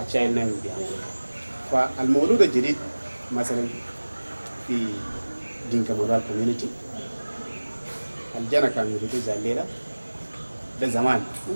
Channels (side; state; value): both; inverted; correlation -1.00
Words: الشايل نامي بيعملوا. فالمولود الجديد مثلا في دينكا مورال كوميونيتي الجنة كانوا يريدوا زي الليلة ده زمان